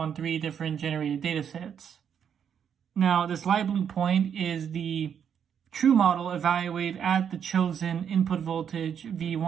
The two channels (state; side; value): quieter; left; 8.1 dB